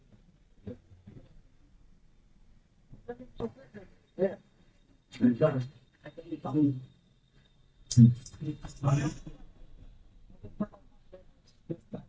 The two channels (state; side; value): identical; both; correlation 1.00